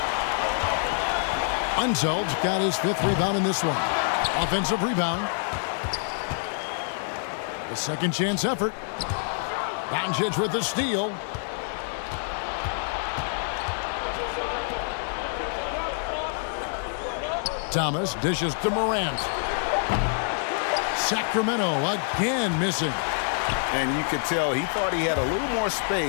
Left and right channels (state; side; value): silent; right; 61 dB below the other